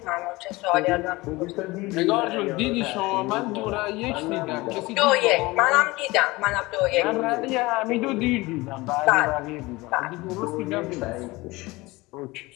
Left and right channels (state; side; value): quieter; right; 21.5 dB